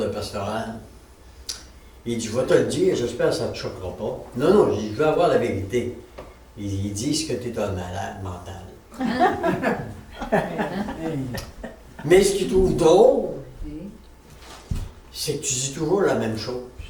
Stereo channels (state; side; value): identical; both; correlation 1.00